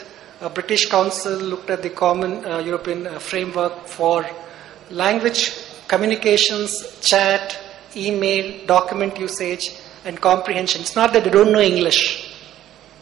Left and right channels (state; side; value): quieter; left; 12.5 dB